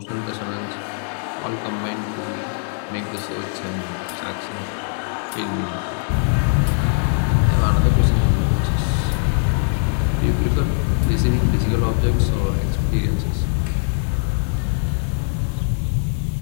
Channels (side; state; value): right; silent; 56 dB below the other